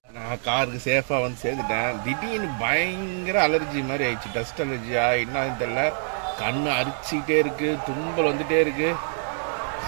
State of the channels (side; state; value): left; silent; digital silence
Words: நான் காருக்கு சேஃபா வந்து சேர்ந்துட்டேன். திடீர்னு பயங்கர அலர்ஜி மாதிரி ஆயிடுச்சு. டஸ்ட் அலர்ஜியா என்னன்னு தெரியல. கண்ணு அரிச்சுக்கிட்டே இருக்கு, தும்பல் வந்துட்டே இருக்கு.